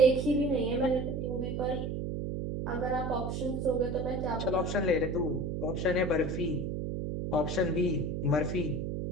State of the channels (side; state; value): right; noise; hum, 3 dB below the sound